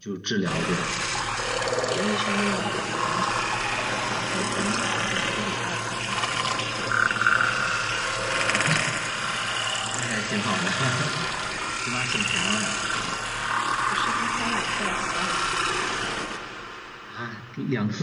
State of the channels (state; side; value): identical; both; correlation 1.00